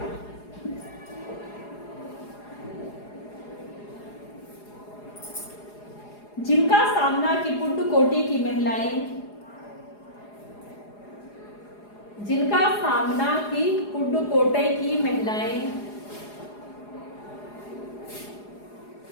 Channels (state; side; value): late; right; 4.8 ms